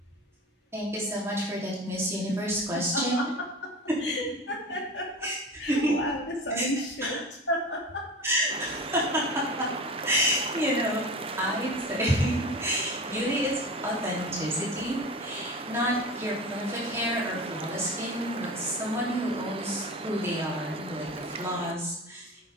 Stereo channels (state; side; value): normal; both; correlation 0.32